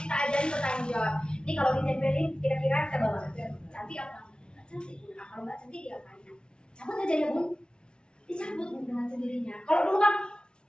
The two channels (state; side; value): late; right; 0.055 ms